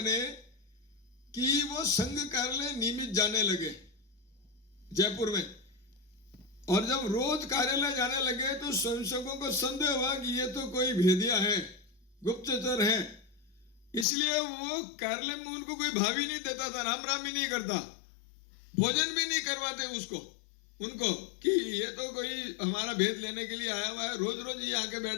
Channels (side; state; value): right; drops out; at 14.1 s